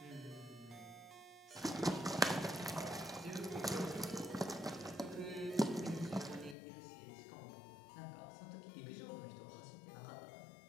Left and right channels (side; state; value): right; drops out; at 6.6 s